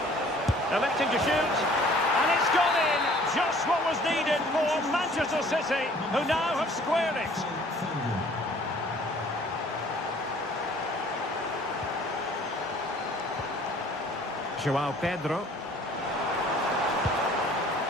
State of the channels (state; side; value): normal; both; correlation 0.54